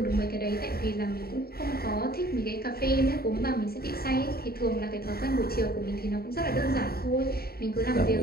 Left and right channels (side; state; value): right; late; 0.45 ms